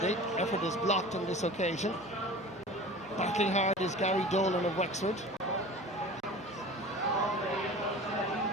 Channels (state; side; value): normal; both; correlation 0.39